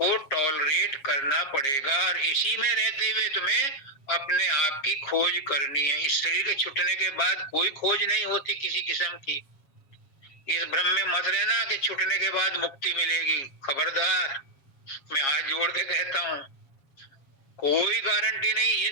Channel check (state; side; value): late; right; 7.4 ms